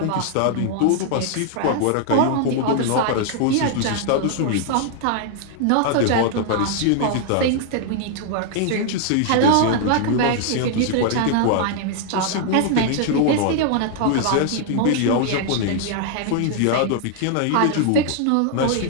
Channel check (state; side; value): different; both; correlation 0.00